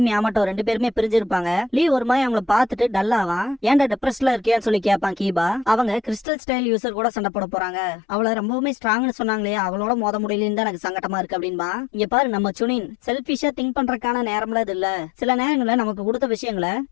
Yamato ரெண்டு பேருமே பிரிஞ்சிருப்பாங்க. லீ ஒரு மாதிரி அவங்கள பார்த்துட்டு டல்லாவான். ஏன்டா டிப்ரெஸ்ல இருக்கியான்னு சொல்லி கேட்பான் கீபா. அவங்க கிறிஸ்டல் ஸ்டைல் யூசர் கூட சண்டை போட போறாங்க. அவளை ரொம்பவுமே ஸ்ட்ராங்னு சொன்னாங்களே, அவளோட மோத முடியலன்னு தான் எனக்கு சங்கடமா இருக்கு அப்படின்பா. இங்க பாரு, நம்ம சுனின் செல்ஃபிஷா திங்க் பண்ற நேரம்ல இது இல்ல. சில நேரங்கள்ல நமக்கு கொடுத்த விஷயங்களை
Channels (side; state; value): right; drops out; at 6.2 s